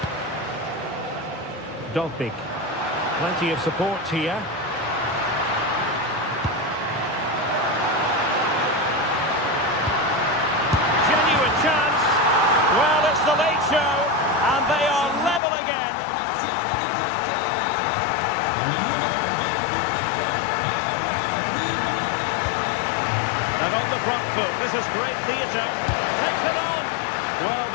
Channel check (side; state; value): right; drops out; at 15.4 s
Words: Dogbik. Plenty of support here. Genuine chance. Well, it's the late show, and they are level again. And on the front foot, this is great theatre. Takes it on. Well,